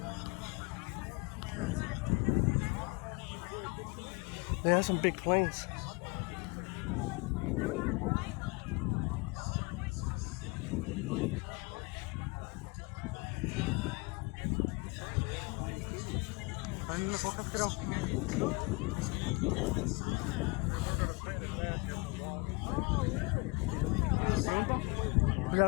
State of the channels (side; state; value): right; quieter; 28.3 dB